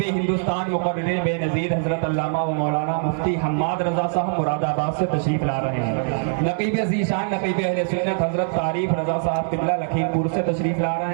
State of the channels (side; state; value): left; silent; digital silence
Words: ہندوستان مقرر بے نظیر حضرت علامہ و مولانا مفتی حماد رضا صاحب مراد آباد سے تشریف لا رہے ہیں۔ نقیب ذیشان نقیب اہل سنت حضرت تعریف رضا صاحب قبلہ لکھیم پور سے تشریف لا